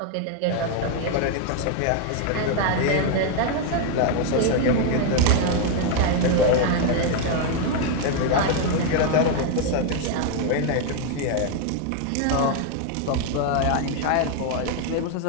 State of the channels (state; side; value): different; both; correlation 0.00